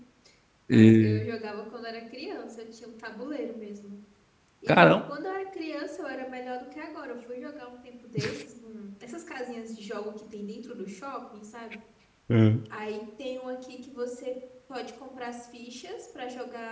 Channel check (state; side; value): identical; both; correlation 1.00